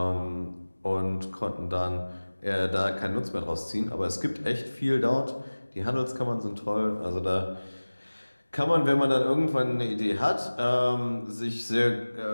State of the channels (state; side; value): inverted; both; correlation -1.00